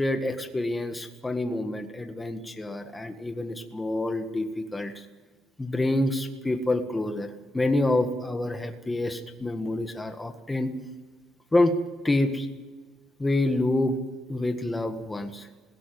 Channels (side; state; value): both; normal; correlation 0.88